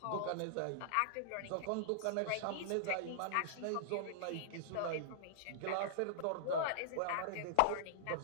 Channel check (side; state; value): both; different; correlation -0.01